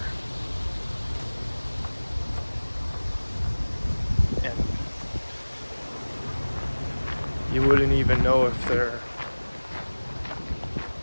And you wouldn't even know if they're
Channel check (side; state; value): both; inverted; correlation -1.00